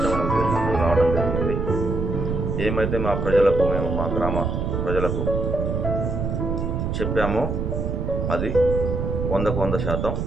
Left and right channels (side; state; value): right; noise; rumble, 1 dB below the sound